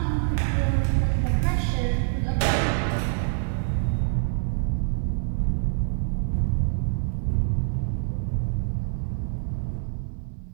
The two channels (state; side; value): silent; left; digital silence